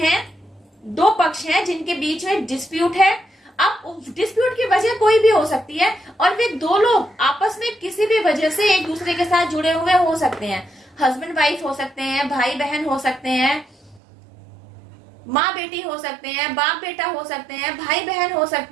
दो पक्ष हैं जिनके बीच में डिस्प्यूट है। अब डिस्प्यूट की वजह कोई भी हो सकती है और वे दो लोग आपस में किसी भी वजह से एक दूसरे के साथ जुड़े हुए हो सकते हैं। हस्बैंड वाइफ हो सकते हैं, भाई बहन हो सकते हैं, माँ बेटी हो सकते हैं, बाप बेटा हो सकते हैं, भाई बहन हो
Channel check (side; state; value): left; drops out; at 14.0 s